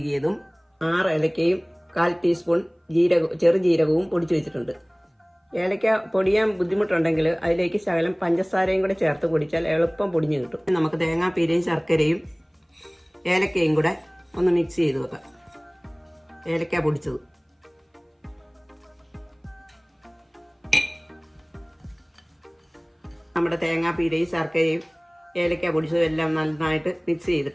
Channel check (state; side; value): identical; both; correlation 1.00